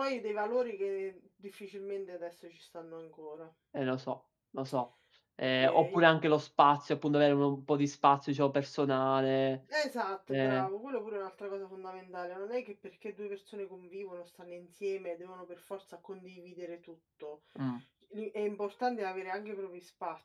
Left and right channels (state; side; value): identical; both; correlation 1.00